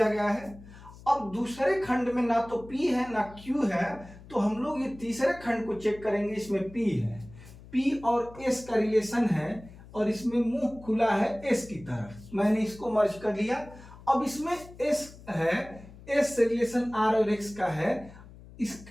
गया है। अब दूसरे खंड में ना तो P है ना Q है, तो हम लोग ये तीसरे खंड को चेक करेंगे, इसमें P है। P और S का रिलेशन है, और इसमें मुंह खुला है S की तरफ, मैंने इसको मर्ज कर लिया। अब इसमें S है, S से रिलेशन R और X का है,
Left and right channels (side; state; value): left; noise; hum, 19 dB below the sound